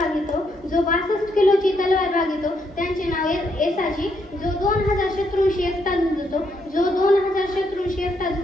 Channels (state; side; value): normal; both; correlation 0.76